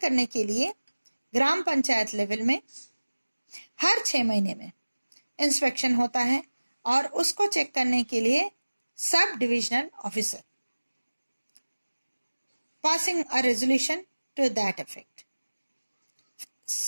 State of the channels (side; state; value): both; inverted; correlation -1.00